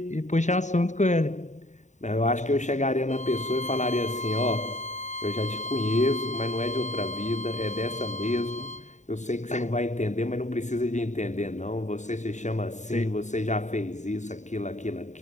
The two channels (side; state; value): right; late; 0.34 ms